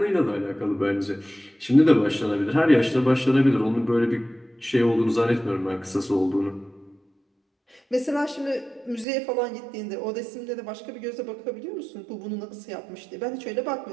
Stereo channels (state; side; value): drops out; left; at 9.1 s